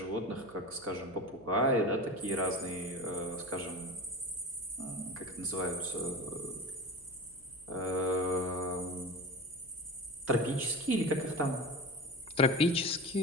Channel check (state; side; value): noise; left; hum, 26 dB below the sound